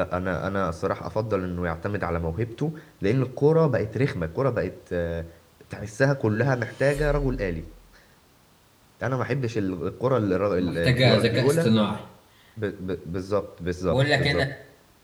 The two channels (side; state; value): both; identical; correlation 1.00